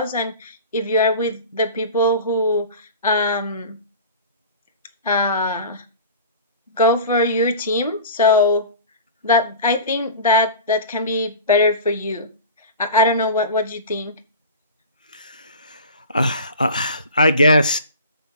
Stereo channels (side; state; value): both; inverted; correlation -0.36